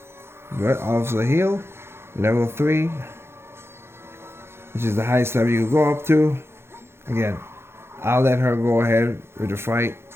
Good. Officer heal. Level 3. Which is the highest level you can go up to. Again, I'll let her go ahead with the fight.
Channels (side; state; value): left; late; 0.12 ms